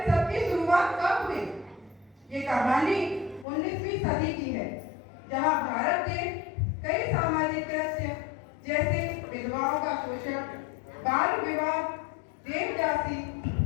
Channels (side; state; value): right; drops out; at 3.5 s